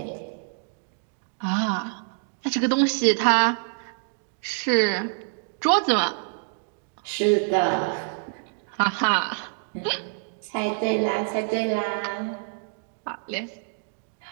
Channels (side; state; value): left; silent; 59 dB below the other